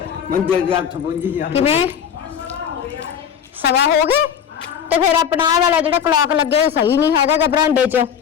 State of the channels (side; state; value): right; quieter; 8.3 dB